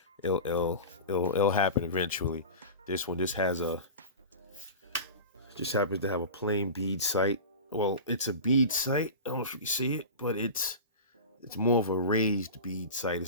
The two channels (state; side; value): inverted; both; correlation -0.31